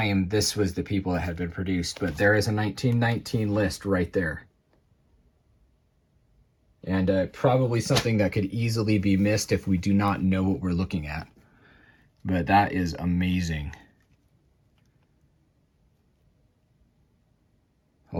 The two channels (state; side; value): identical; both; correlation 1.00